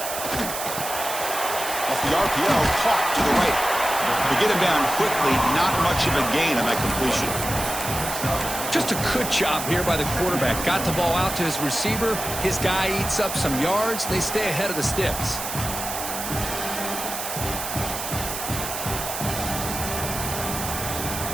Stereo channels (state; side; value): noise; right; hiss, 6 dB below the sound